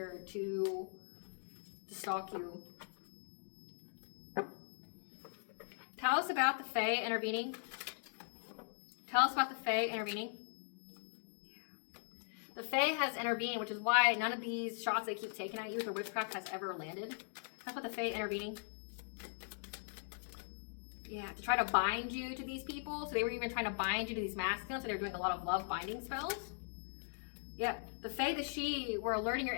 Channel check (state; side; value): silent; right; digital silence